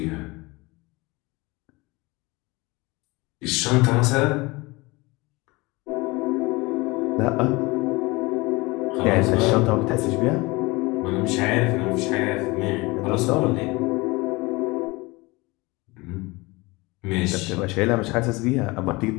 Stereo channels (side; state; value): right; quieter; 23.7 dB